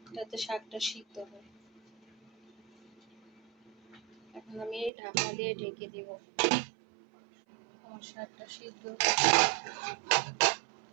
যাতে শাকটা সিদ্ধ হয়। এখন আমি এই ঢাকনা দিয়ে ঢেকে দিব। আমার শাকটা সিদ্ধ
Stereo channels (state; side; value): drops out; left; at 4.9 s